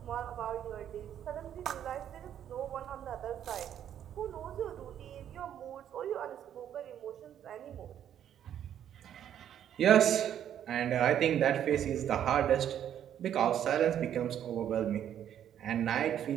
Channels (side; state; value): left; quieter; 10.1 dB